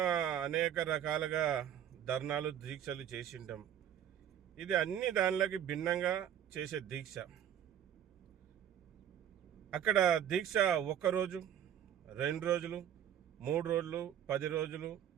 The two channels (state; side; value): quieter; left; 10.1 dB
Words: అనేక రకాలుగా ధర్నాలు, దీక్షలు చేసింటాం. ఇది అన్ని దానిలోకి భిన్నంగా చేసే దీక్ష. అక్కడ దీక్ష 1 రోజు, 2 రోజులు, 3 రోజులు, 10 రోజులు,